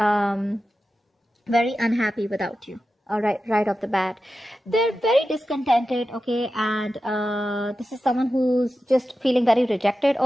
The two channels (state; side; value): normal; both; correlation 0.92